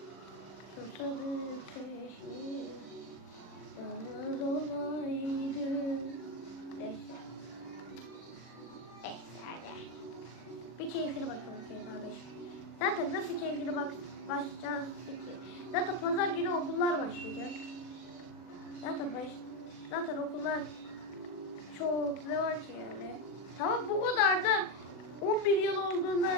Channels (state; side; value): late; right; 40 ms